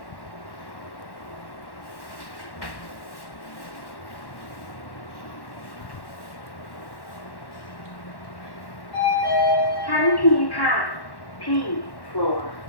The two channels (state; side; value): late; right; 1.1 ms